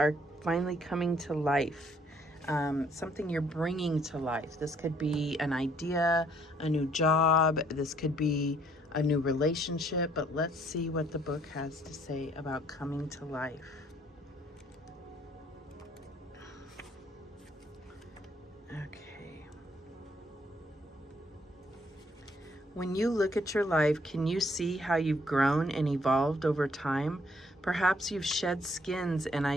finally coming to life. Something you're bringing to life. This could be an idea, a new job. This could be a new relationship. But let's see what the book has to say about coming to life. Okay. When you look at your life, can you see how you've grown and evolved over time? Perhaps you've shed skins and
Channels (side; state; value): both; normal; correlation 0.65